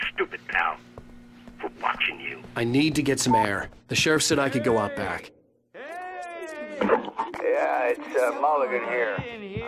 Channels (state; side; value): identical; both; correlation 1.00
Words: stupid, pal. We're watching you. I need to get some air. The sheriff said I could go out back. Yeah, it's Mulligan here. In